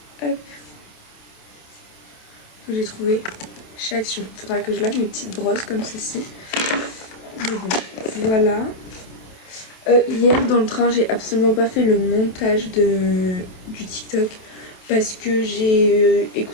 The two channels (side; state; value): right; late; 28 ms